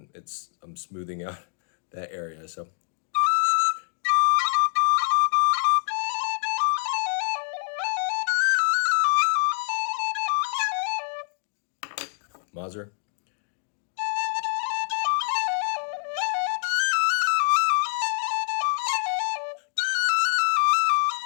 smoothing out that area. So Mazur.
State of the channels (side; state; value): right; silent; digital silence